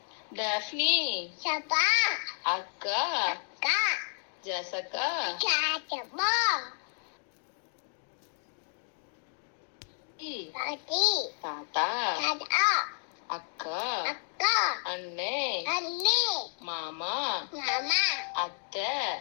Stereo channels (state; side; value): silent; right; digital silence